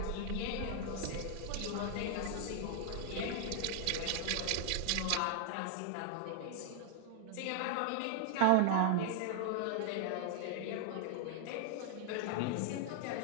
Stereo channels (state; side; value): different; both; correlation 0.00